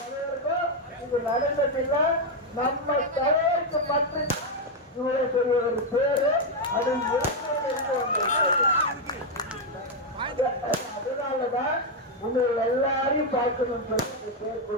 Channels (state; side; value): normal; both; correlation 0.02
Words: இது நடந்ததில்லை. நம்ம தலைவருக்கு மட்டும் இவ்வளவு பெரிய ஒரு பேரு அது அதனாலதான் உங்களை எல்லாரையும் பார்க்கணும் சொல்லி பேர்